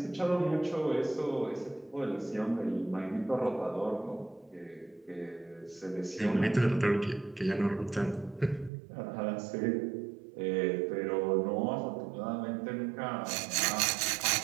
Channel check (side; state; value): left; drops out; at 8.7 s